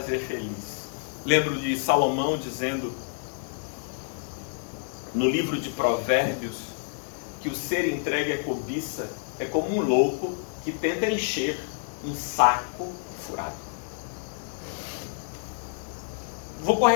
feliz. Lembro de Salomão dizendo no livro de Provérbios que o ser entregue à cobiça é como um louco que tenta encher um saco furado. Vou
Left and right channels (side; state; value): right; silent; 59 dB below the other